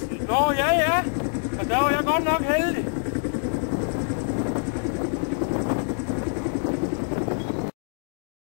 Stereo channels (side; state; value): right; silent; 61 dB below the other